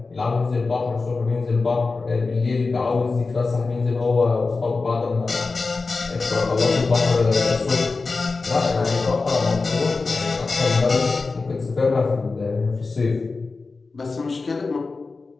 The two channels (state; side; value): quieter; right; 4.0 dB